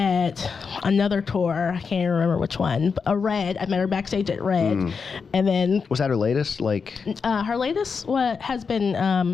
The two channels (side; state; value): right; quieter; 5.5 dB